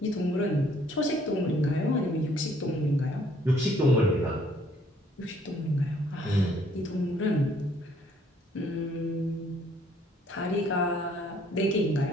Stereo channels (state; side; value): normal; both; correlation 0.64